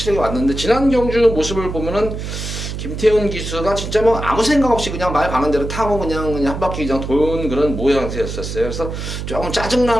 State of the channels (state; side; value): noise; right; hum, 6 dB below the sound